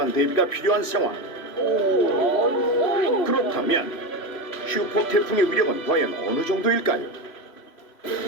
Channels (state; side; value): late; right; 3.0 ms